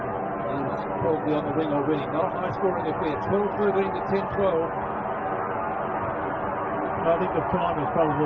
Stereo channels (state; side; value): identical; both; correlation 1.00